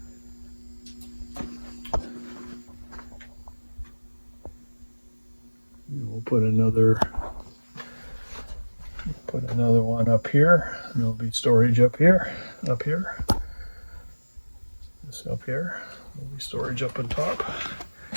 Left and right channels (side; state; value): both; inverted; correlation -1.00